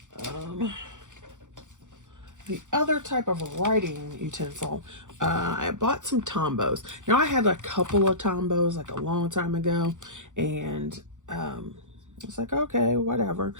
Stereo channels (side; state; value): left; late; 0.86 ms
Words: the other type of writing utensil. I bought some Tombos. Now, I had a couple of Tombos like a long time ago, and it's like, okay, whatever.